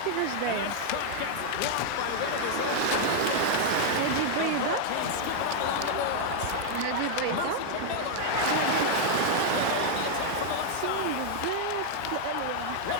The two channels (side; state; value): both; different; correlation 0.00